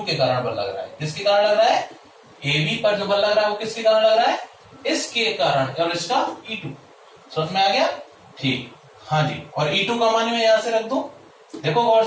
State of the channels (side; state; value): both; identical; correlation 1.00